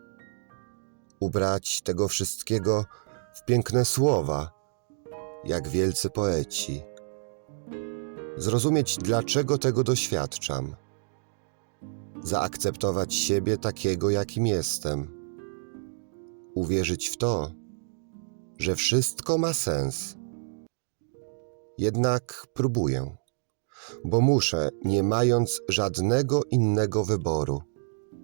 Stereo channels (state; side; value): silent; left; digital silence